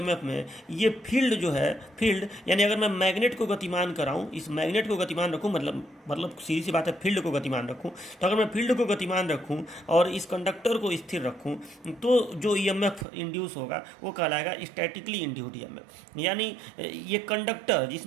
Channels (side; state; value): left; drops out; at 13.1 s